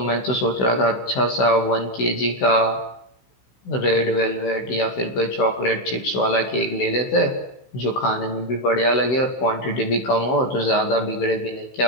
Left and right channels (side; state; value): right; late; 16 ms